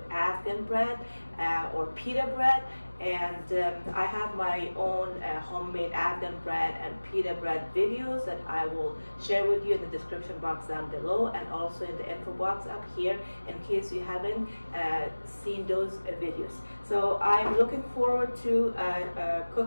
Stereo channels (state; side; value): inverted; both; correlation -1.00